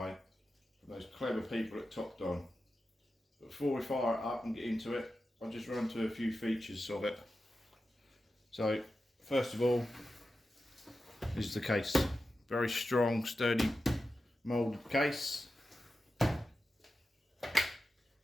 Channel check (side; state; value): both; normal; correlation 0.91